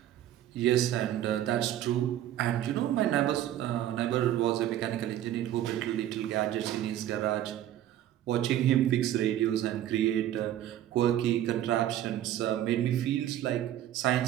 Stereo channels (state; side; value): quieter; left; 12.2 dB